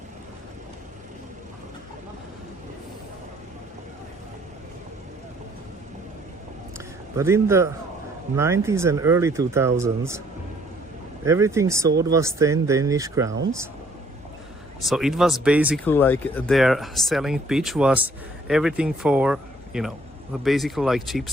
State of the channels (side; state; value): both; normal; correlation 0.62